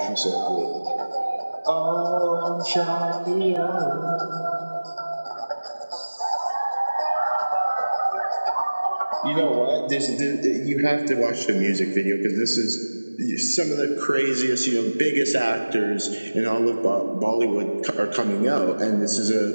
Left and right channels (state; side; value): inverted; both; correlation -1.00